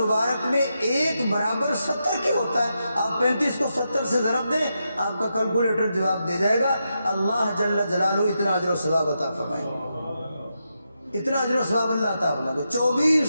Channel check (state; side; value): inverted; both; correlation -0.85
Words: میں ایک برابر 70 کی ہوتا ہے. آپ 35 کو 70 سے ضرب دیں, آپ کا کیلکولیٹر جواب دے جائے گا. اللہ جل جلالہ اتنا اجر و ثواب عطا فرمائیں گے, اتنا اجر و ثواب اللہ عطا فرمائے گا.